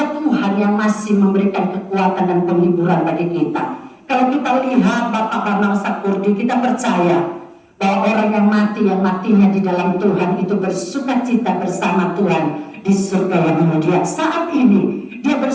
Tuhan yang masih memberikan kekuatan dan penghiburan bagi kita. Kalau kita lihat Bapak Bambang Sakurdi, kita percaya bahwa orang yang matinya di dalam Tuhan itu bersukacita bersama Tuhan di surga yang mulia. Saat ini dia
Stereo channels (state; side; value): identical; both; correlation 1.00